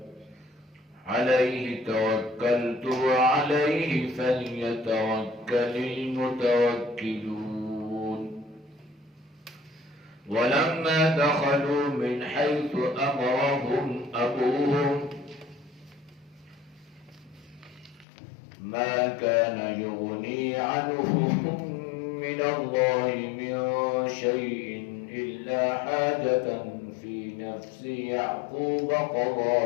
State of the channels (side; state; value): right; drops out; at 18.1 s